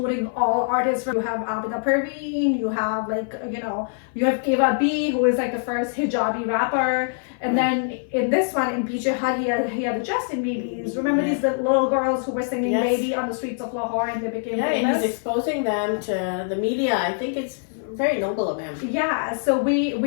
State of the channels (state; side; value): silent; right; 56 dB below the other